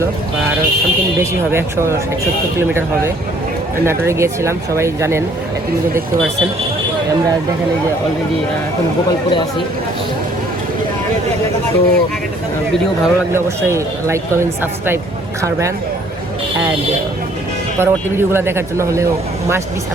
বা আরও সামথিং বেশি হবে, 170 কিলোমিটার হবে। নাটোরে গিয়েছিলাম, সবাই জানেন, কিন্তু দেখতে পাচ্ছেন আমরা দেখেন এই যে অলরেডি এখন গোপালপুরে আছি। তো ভিডিও ভালো লাগলে অবশ্যই লাইক কমেন্ট সাবস্ক্রাইব করবেন, অ্যান্ড পরবর্তী ভিডিওগুলো দেখার জন্য হলেও মাস্ট বি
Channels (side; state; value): both; normal; correlation 0.60